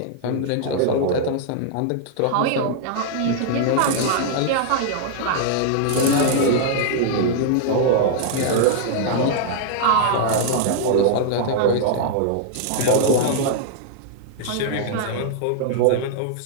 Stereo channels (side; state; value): both; different; correlation -0.01